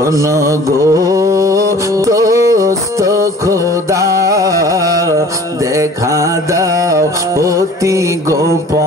গো দোস্ত খোদা দেখা দাও অতি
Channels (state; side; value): normal; both; correlation 0.47